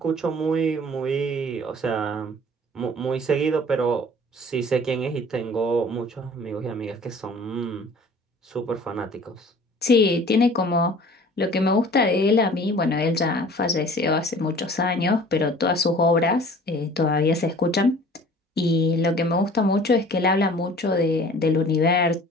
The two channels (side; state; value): both; normal; correlation 0.48